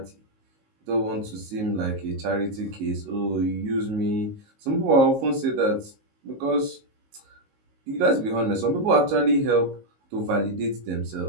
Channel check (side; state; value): left; late; 19 ms